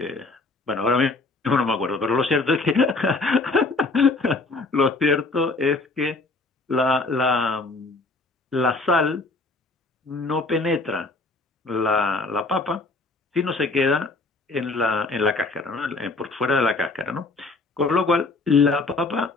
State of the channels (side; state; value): right; quieter; 3.4 dB